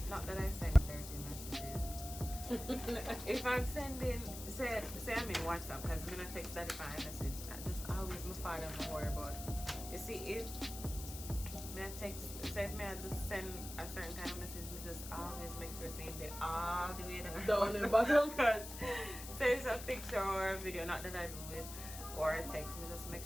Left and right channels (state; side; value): noise; left; hiss, 10 dB below the sound